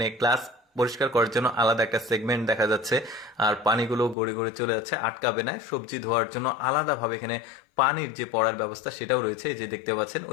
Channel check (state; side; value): drops out; right; at 4.2 s